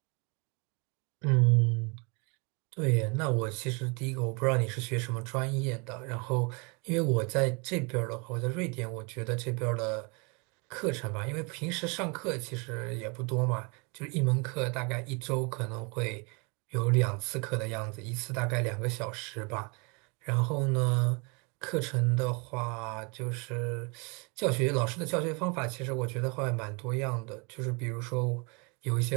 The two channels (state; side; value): quieter; left; 31.5 dB